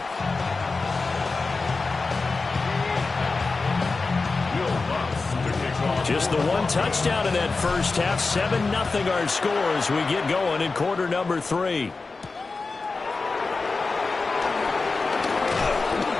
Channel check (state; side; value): quieter; right; 4.0 dB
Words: Just the 1 touchdown in that first half. 7-0 our score as we get going in quarter number 3.